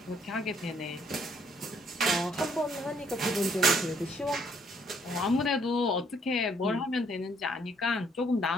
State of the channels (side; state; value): both; normal; correlation 0.67